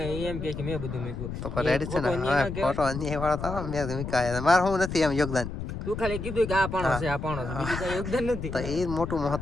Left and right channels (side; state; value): left; noise; rumble, 6 dB below the sound